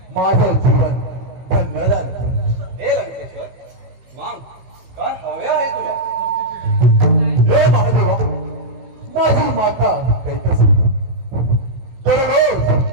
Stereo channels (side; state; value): left; late; 16 ms